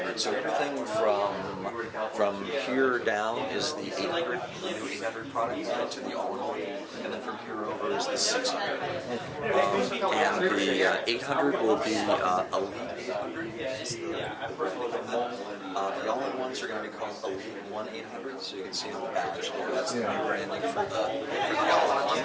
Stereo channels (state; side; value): identical; both; correlation 1.00